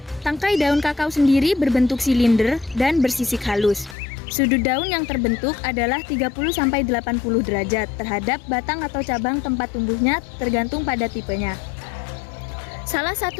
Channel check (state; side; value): drops out; right; at 4.0 s